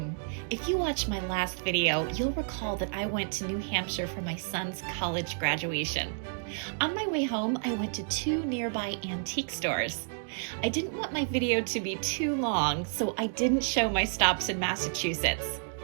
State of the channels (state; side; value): silent; left; digital silence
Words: If you watched my last video, you'll recall that I went to New Hampshire for my son's college graduation. On my way home, I went to 2 nearby antique stores. I didn't want my video to be too long, so I didn't show my stops in Massachusetts.